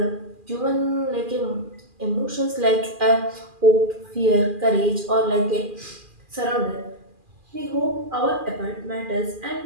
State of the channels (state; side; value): late; left; 2.4 ms